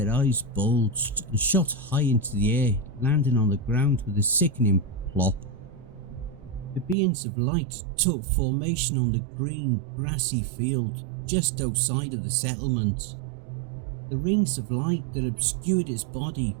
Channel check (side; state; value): left; drops out; at 7.0 s